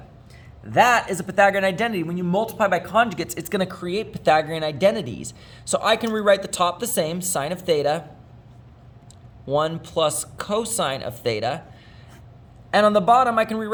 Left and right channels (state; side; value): identical; both; correlation 1.00